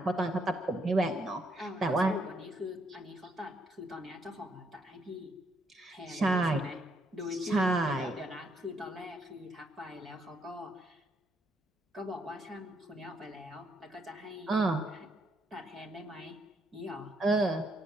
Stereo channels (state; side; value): normal; both; correlation 0.74